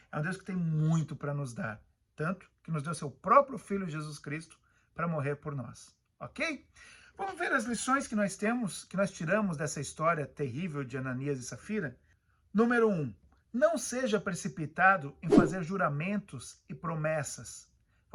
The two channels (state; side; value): identical; both; correlation 1.00